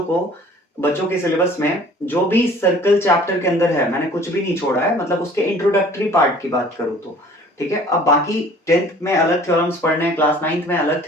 के सिलेबस में जो भी सर्कल चैप्टर के अंदर है, मैंने कुछ भी नहीं छोड़ा है, मतलब उसके इंट्रोडक्टरी पार्ट की बात करूं तो, ठीक है। अब बाकी 10th में अलग थ्योरम्स पढ़ने हैं, क्लास 9th में अलग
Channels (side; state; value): both; normal; correlation 0.51